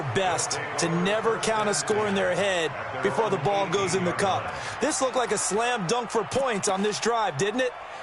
best to never count a score in their head before the ball goes in the cup. This looked like a slam dunk for points on this drive, didn't it?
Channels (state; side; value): identical; both; correlation 1.00